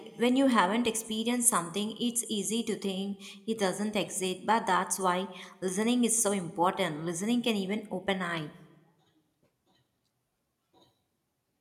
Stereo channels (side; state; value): both; identical; correlation 1.00